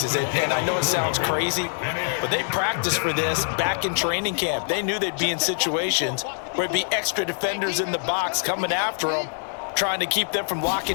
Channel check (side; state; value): right; silent; 62 dB below the other